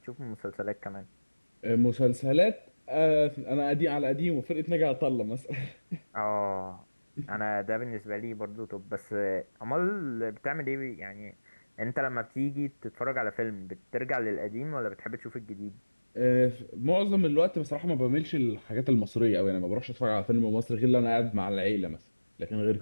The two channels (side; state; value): both; inverted; correlation -1.00